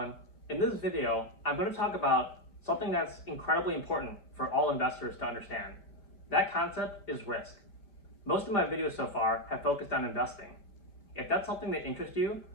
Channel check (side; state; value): right; late; 5.1 ms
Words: In this video, I'm going to talk about something that's incredibly important for all investors to understand. That concept is risk. Most of my videos so far have focused on investing. If that's something that interests you,